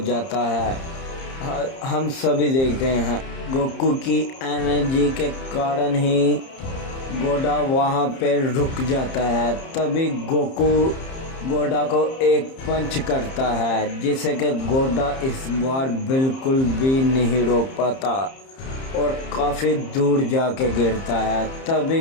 है। हम सभी देखते हैं गोकू की एनर्जी के कारण ही गोडा वहाँ पे रुक जाता है। तभी गोकू गोडा को एक पंच करता है जिसे कि गोडा इस बार बिल्कुल भी नहीं रोक पाता और काफ़ी दूर जाके गिरता है।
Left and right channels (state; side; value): late; right; 30 ms